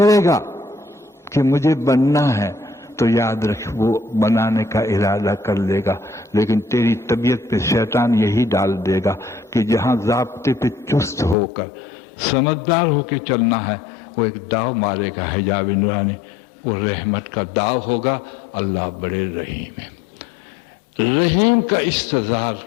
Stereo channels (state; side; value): drops out; right; at 11.4 s